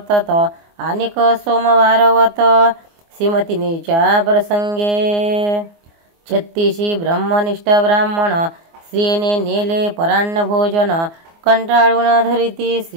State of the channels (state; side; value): late; left; 24 ms